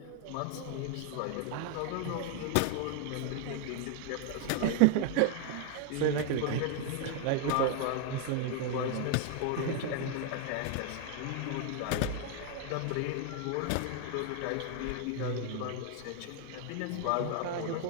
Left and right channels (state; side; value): different; both; correlation 0.00